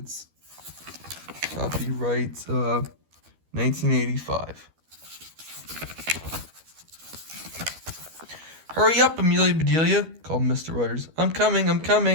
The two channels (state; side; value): late; left; 12 ms